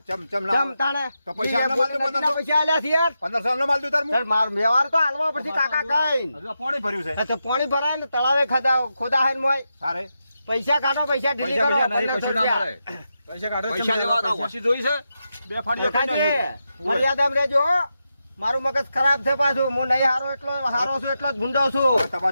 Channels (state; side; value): inverted; both; correlation -0.87